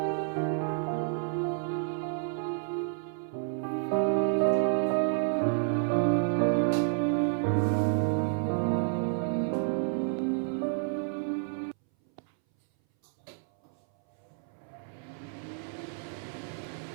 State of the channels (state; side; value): silent; left; 58 dB below the other